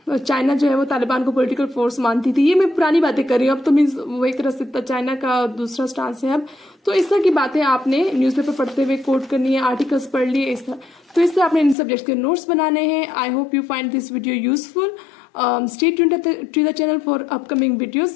चाइना जो है वो तालिबान को पॉलिटिकल फोर्स मानती थी। ये मैं पुरानी बातें कर रही हूँ, अब तो मीन्स वो एक तरह से चाइना का दूसरा स्टांस है अब। तो इस तरह की बातें आपने न्यूज़पेपर पढ़ते हुए कोट करनी है, आर्टिकल्स पढ़ लिए इस तरह। तो इस तरह आपने इन सब्जेक्ट्स के नोट्स बनाने हैं। I hope you find this video useful. Stay tuned to the channel for upcoming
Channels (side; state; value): right; drops out; at 11.8 s